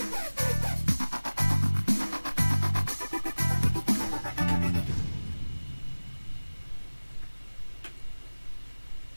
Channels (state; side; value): inverted; both; correlation -1.00